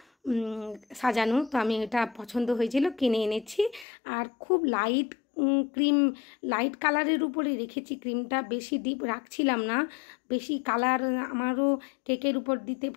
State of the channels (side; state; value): right; drops out; at 3.9 s